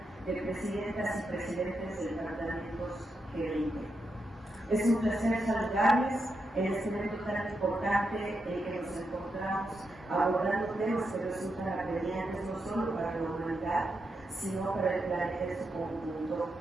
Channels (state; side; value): normal; both; correlation 0.84